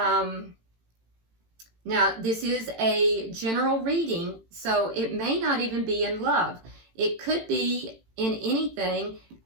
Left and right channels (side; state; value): left; late; 18 ms